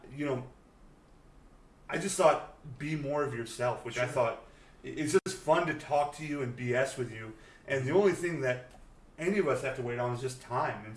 I just thought, be more of yourself, which I Sure. thought it's just fun to talk to you and BS with you. And the only thing that any of us have to wait on is just time. And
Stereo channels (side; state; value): both; identical; correlation 1.00